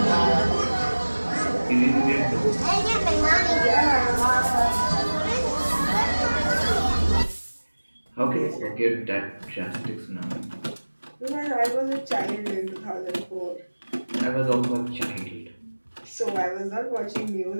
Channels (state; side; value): inverted; both; correlation -1.00